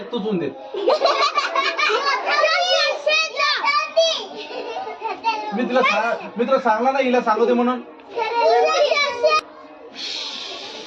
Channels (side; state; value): both; identical; correlation 1.00